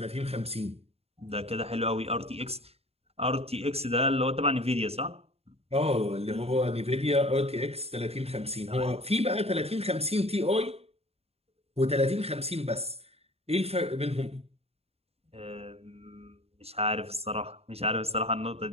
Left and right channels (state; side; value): late; left; 0.29 ms